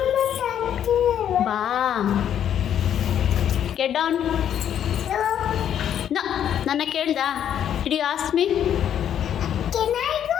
ಬಾ. Get down. ನನ್ನ ಕೇಳ್ದ? Did you ask me?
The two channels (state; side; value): quieter; right; 9.7 dB